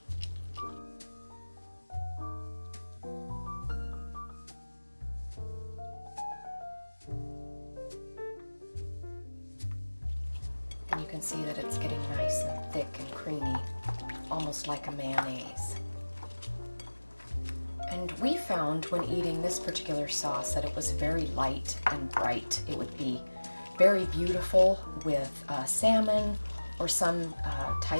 And you can see that it's getting nice and thick and creamy, almost like a mayonnaise. And we found when eating this particular sauce that it was very light and bright. It would be very beautiful with salmon or some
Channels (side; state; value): both; inverted; correlation -1.00